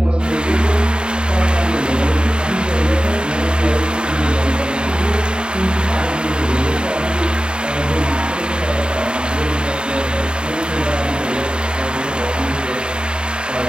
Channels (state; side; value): late; left; 0.050 ms